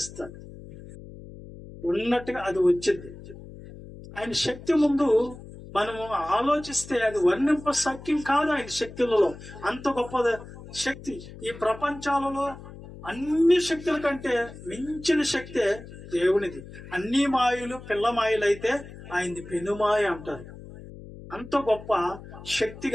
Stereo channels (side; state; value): left; noise; hum, 15 dB below the sound